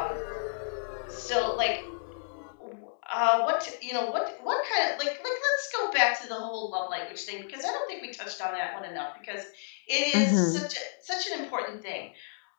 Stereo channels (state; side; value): silent; right; digital silence